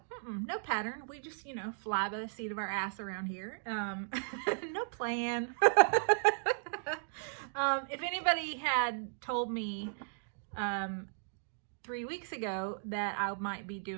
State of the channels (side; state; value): left; silent; digital silence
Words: pattern. We just, fly by the seat of our ass around here. No plan. If anybody had told me 3 weeks ago that I might be